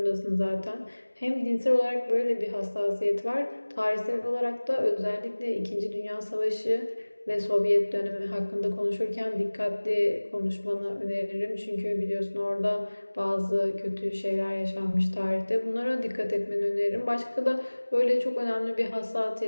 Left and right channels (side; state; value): both; inverted; correlation -1.00